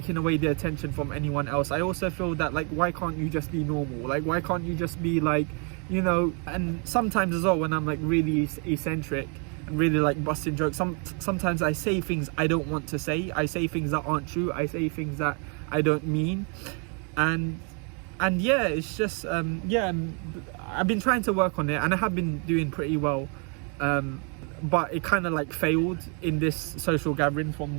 away the attention from anyone else. I also feel that like, why can't you just be normal? Like, why can't you just be like, you know? And sometimes as well, when I'm like really eccentric and really like busting jokes, sometimes I say things I don't want to say. I say things that aren't true. I say things that I don't mean. And yeah, it's just yeah, I've been trying to work on it and I have been doing pretty well. But it kind of like failed in this social gathering from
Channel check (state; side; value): quieter; left; 36.8 dB